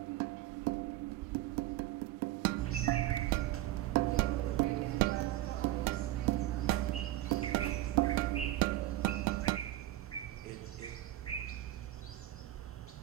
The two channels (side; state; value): left; quieter; 15.3 dB